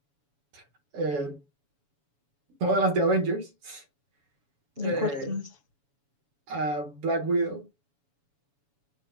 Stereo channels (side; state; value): left; late; 7.1 ms